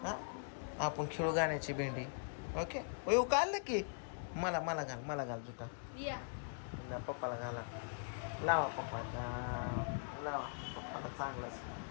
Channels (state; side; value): silent; right; digital silence